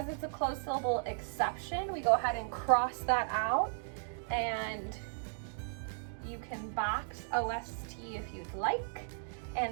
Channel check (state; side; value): silent; left; digital silence